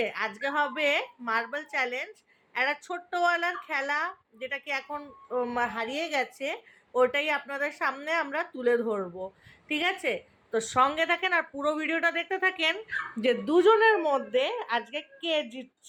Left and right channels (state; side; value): identical; both; correlation 1.00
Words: আজকে হবে মার্বেল চ্যালেঞ্জ, একটা ছোট্টওয়ালার খেলা, যেটা কি এখন হারিয়ে গেছে। ওটাই আপনাদের সামনে আমরা তুলে ধরবো, ঠিক আছে? তো সঙ্গে থাকেন আর পুরো ভিডিওটা দেখতে থাকেন যে দুজনের মধ্যে আজকে কে